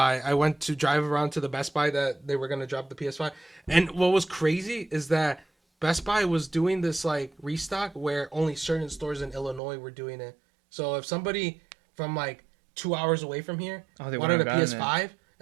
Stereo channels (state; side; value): drops out; left; at 9.6 s